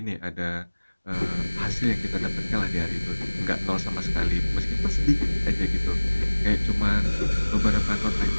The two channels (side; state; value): both; inverted; correlation -1.00